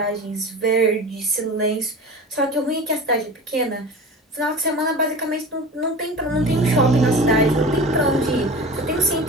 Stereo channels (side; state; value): both; normal; correlation 0.34